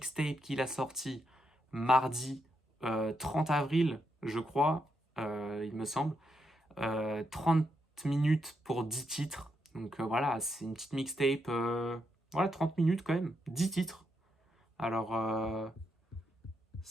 qu'il a sorti mardi 30 avril, je crois, il me semble. 30 minutes pour 10 titres. Donc voilà, c'est une petite mixtape. Voilà, 30 minutes quand même, 10 titres. Alors,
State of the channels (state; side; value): normal; both; correlation 0.81